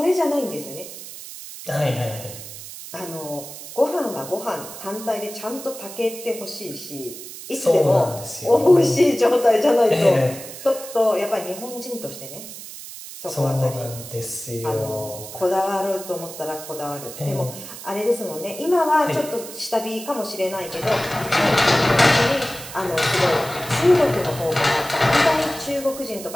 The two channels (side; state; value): right; noise; hiss, 12 dB below the sound